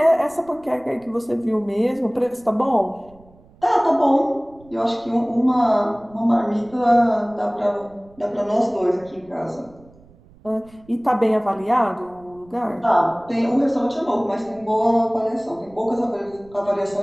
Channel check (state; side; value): noise; right; rumble, 27 dB below the sound